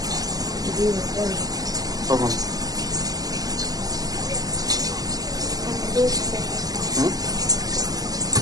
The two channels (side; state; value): left; late; 0.18 ms